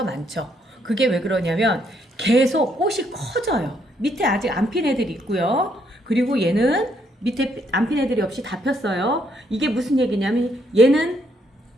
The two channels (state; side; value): normal; both; correlation 0.72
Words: 많죠. 그게 왜 그러냐면 계속 꽃이 커져요. 밑에 아직 안 핀 애들이 있고요. 그리고 얘는 밑에 안 핀 애들이 없이 다 폈어요. 이게 무슨 얘기냐면 얘는